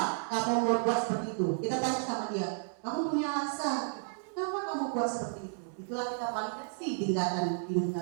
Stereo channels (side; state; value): left; silent; 56 dB below the other